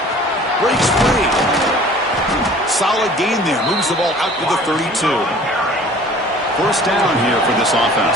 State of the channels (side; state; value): both; normal; correlation 0.48